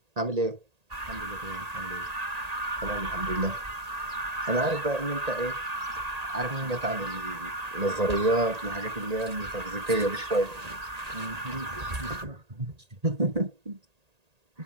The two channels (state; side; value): late; left; 1.8 ms